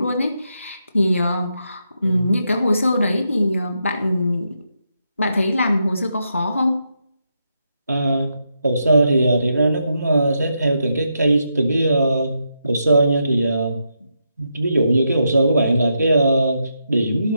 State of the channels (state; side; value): inverted; both; correlation -0.82